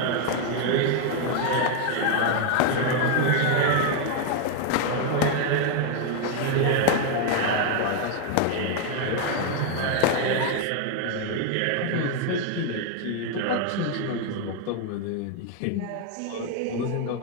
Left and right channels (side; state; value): both; different; correlation 0.00